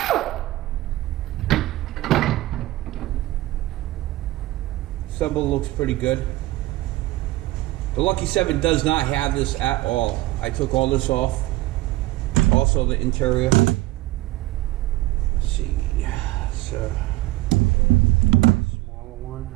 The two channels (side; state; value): left; quieter; 18.2 dB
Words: Assemble looks pretty good. The Lucky 7 does not have this at all. I took all this off. Also the interior. Let's see. So smaller one.